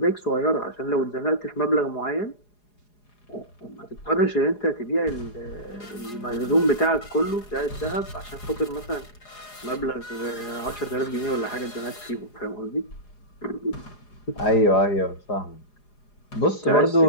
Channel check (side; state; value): right; late; 4.8 ms